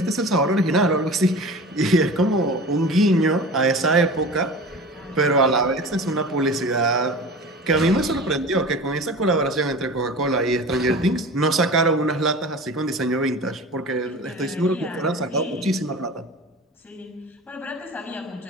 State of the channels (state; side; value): normal; both; correlation 0.35